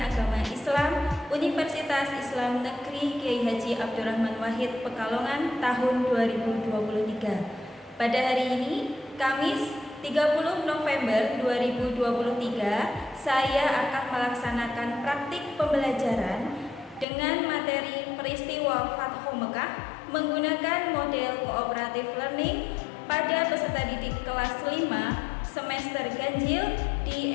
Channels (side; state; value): right; drops out; at 17.1 s